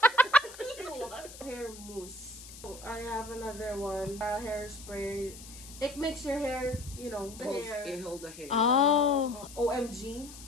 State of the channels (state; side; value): noise; left; hiss, 16 dB below the sound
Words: Hair mousse. I have another one, hairspray. It makes your hair, you know, the hair. It hold the hair. Oh. OMG.